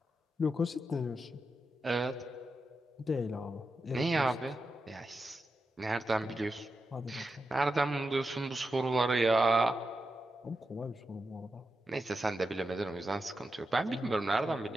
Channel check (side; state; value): both; normal; correlation 0.88